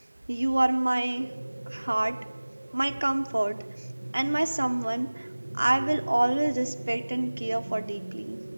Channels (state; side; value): inverted; both; correlation -1.00